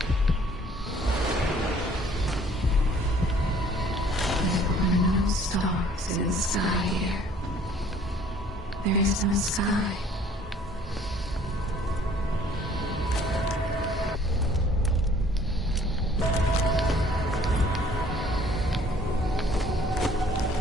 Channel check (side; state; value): both; normal; correlation 0.57